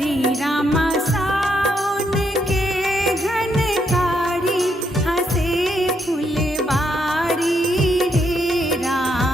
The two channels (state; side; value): normal; both; correlation 0.76